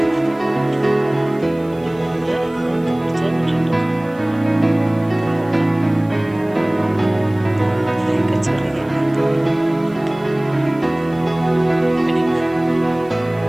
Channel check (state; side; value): noise; right; hiss, 30 dB below the sound